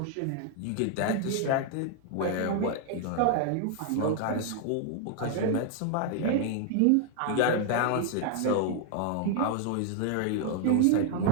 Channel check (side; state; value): both; different; correlation 0.00